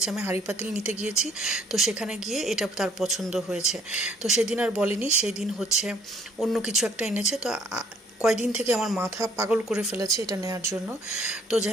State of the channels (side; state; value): both; normal; correlation 0.61